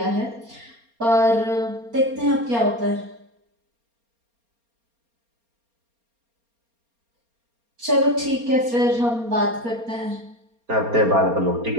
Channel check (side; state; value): left; late; 4.3 ms